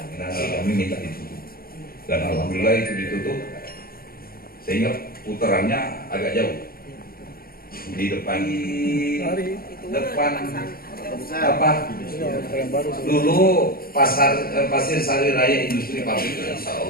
kami minta ditutup. Dan alhamdulillah itu ditutup, sehingga putarannya agak jauh di depan apa dulu pasir Sari Raya Industri Pabrik, insya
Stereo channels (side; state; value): right; late; 0.43 ms